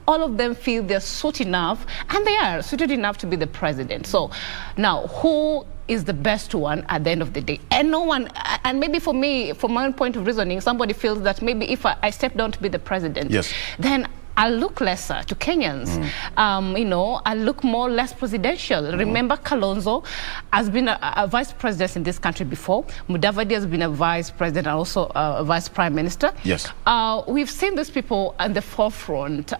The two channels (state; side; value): silent; left; digital silence